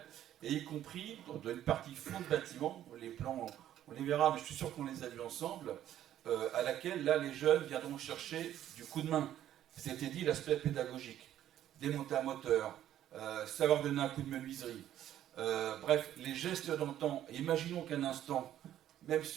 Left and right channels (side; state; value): left; quieter; 11.7 dB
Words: et y compris dans une partie fond de bâtiment, les plans, on les verra, mais je suis sûr qu'on les a vus ensemble, à laquelle, là, les jeunes viendront chercher du coup de main. C'était dit, l'aspect pédagogique, démonter un moteur, savoir donner un coup de menuiserie. Bref, les gestes d'antan. Imaginons qu'un instant, même